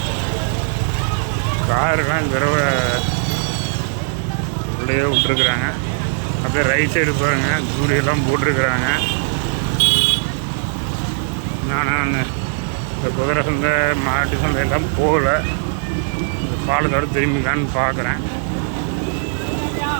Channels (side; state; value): left; silent; digital silence